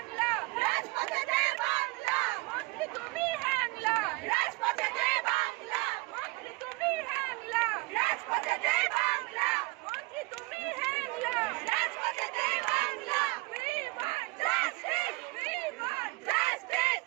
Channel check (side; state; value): left; quieter; 25.0 dB